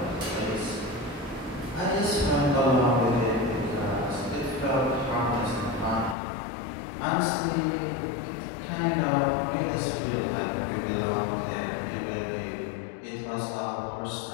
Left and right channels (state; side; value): drops out; right; at 6.2 s